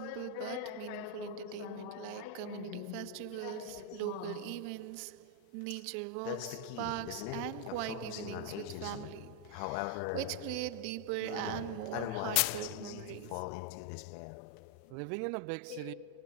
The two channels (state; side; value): different; both; correlation 0.00